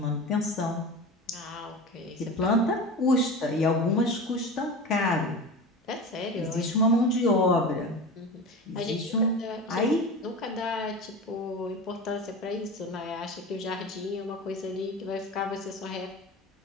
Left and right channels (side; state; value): both; normal; correlation 0.30